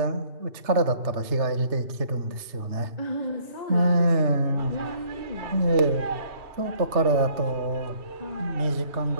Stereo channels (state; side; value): late; left; 3.3 ms